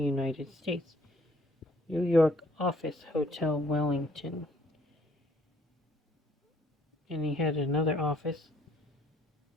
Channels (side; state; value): both; normal; correlation 0.62